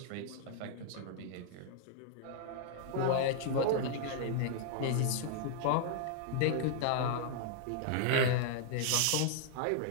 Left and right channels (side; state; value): both; different; correlation -0.01